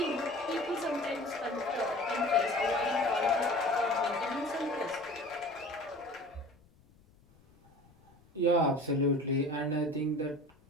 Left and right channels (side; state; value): left; noise; rumble, 29 dB below the sound